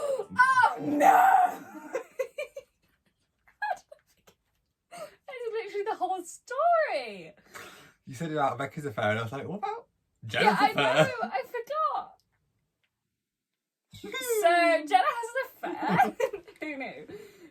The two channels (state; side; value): identical; both; correlation 1.00